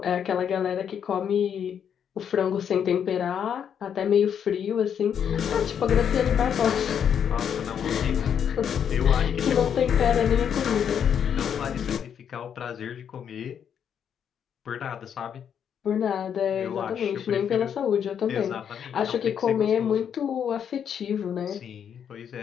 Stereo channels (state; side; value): quieter; right; 8.2 dB